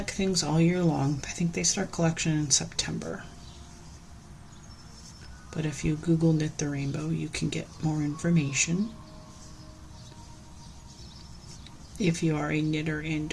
things all year long. I think they start collection in September. But if you Google Knit the Rainbow, you can get more information. If you are a knitter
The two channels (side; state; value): both; identical; correlation 1.00